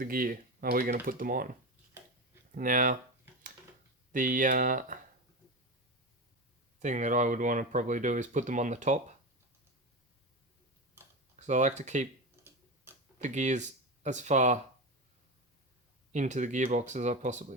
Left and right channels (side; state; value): both; normal; correlation 0.20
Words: gear are we going to put them on? Now, the thing that I would want to probably do is put them on the top, because I like to keep the gears as far into the gearbox as I